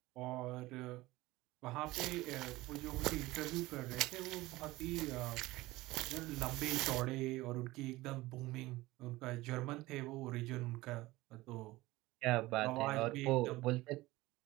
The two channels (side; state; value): left; quieter; 19.1 dB